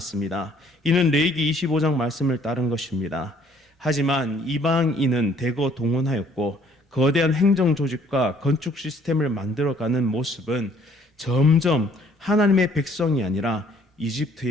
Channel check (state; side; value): normal; both; correlation 0.61